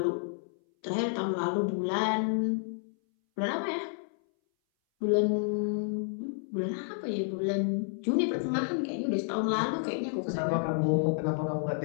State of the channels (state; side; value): silent; right; 58 dB below the other